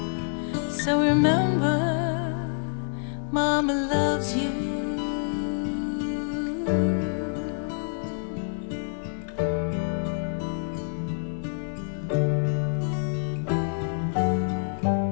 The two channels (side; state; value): right; silent; digital silence